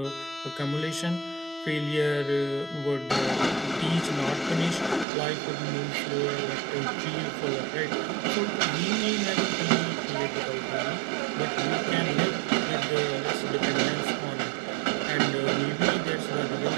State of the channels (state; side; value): drops out; left; at 5.1 s